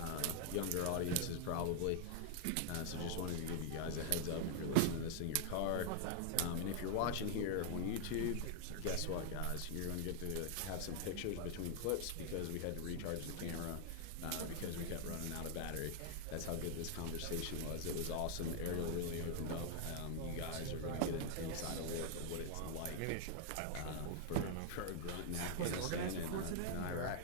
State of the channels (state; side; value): different; both; correlation 0.00